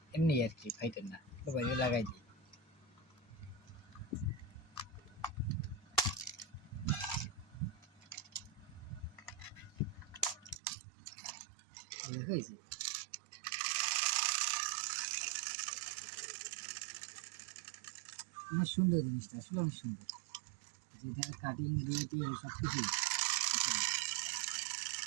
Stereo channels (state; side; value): drops out; left; at 10.6 s